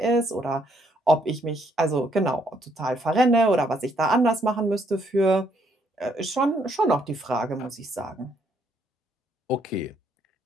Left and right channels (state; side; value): normal; both; correlation 0.70